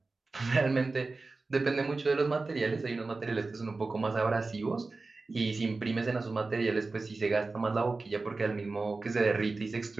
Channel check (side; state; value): left; quieter; 3.6 dB